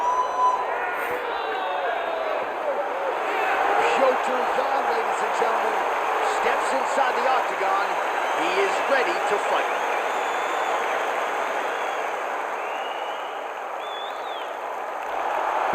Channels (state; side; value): identical; both; correlation 1.00